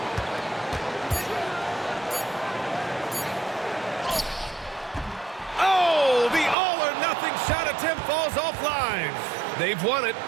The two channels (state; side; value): drops out; left; at 6.6 s